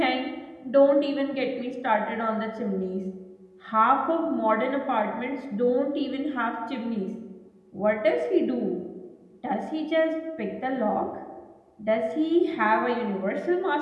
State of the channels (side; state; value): both; identical; correlation 1.00